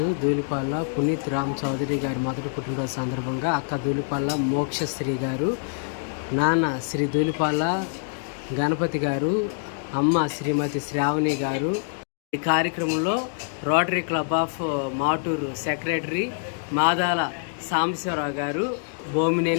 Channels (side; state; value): right; silent; digital silence